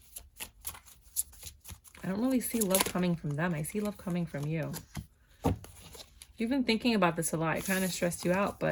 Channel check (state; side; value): identical; both; correlation 1.00